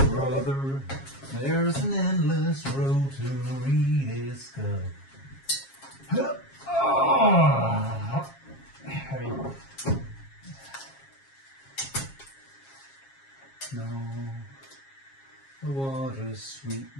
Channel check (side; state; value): right; late; 7.4 ms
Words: there's an endless road to rediscover. Oh, heavy. No, the water's sweet,